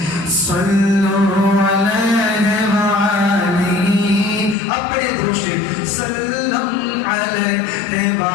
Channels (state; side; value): drops out; right; at 4.5 s